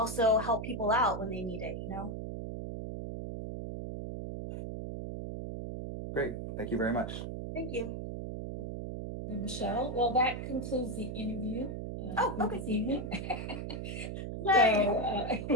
help people out when they need it, Great, thank you very much. Thank you. And Michelle, well, that concludes the interview for Okay. this evening. Yay.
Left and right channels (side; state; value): right; noise; hum, 6 dB below the sound